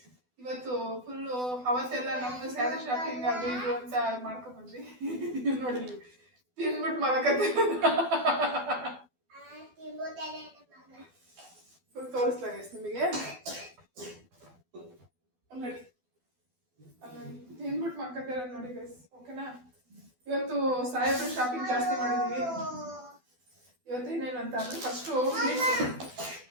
ಇವತ್ತು ಫುಲ್ಲು ಅವತ್ತೆಲ್ಲ ನಮ್ದು ಸ್ಯಾರಿ ಶಾಪಿಂಗ್ ಅದು ಇದು ಅಂತ ಮಾಡ್ಕೊಂಡ್ ಬಂದ್ವಿ. ನೋಡಿ ತಿನ್ಬಿಟ್ಟು ಮಲಕತ್ತೆ. ಫುಲ್ ತೋರಿಸ್ಲಾ ಗೈಸ್ ನಿಮಗೆ. ನೋಡಿ ತಿನ್ಬಿಟ್ಟು ಮಲ್ಕತ್ತೆ ನೋಡಿ ಗೈಸ್. ಓಕೆನಾ? ಇವತ್ತು ಸಾಹೇಬ್ರು ಶಾಪಿಂಗ್ ಜಾಸ್ತಿ ಮಾಡಿದೀವಿ. ಇವತ್ತು ಏನೇನಂತ ಅಂದ್ರೆ ಫಸ್ಟು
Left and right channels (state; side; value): late; left; 12 ms